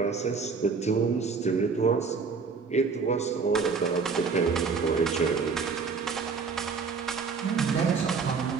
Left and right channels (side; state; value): left; quieter; 5.1 dB